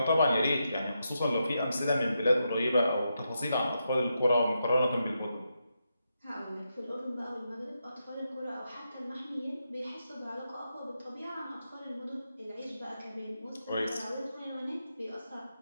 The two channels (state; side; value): inverted; both; correlation -0.85